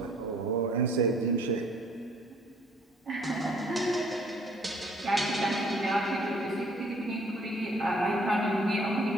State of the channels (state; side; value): normal; both; correlation 0.60